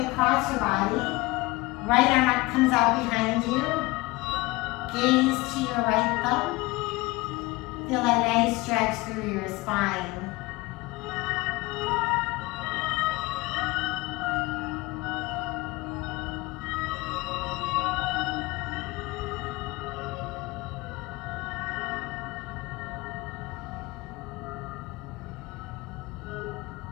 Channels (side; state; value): right; quieter; 22.1 dB